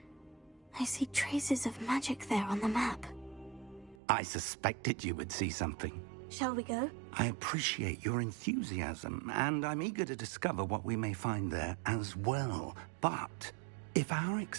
I see traces of magic there on the map. I suspected you would see something. Shall we go? I appreciate your enthusiasm, and I'm eager to discover what we may find there as well. But if our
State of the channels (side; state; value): left; drops out; at 4.0 s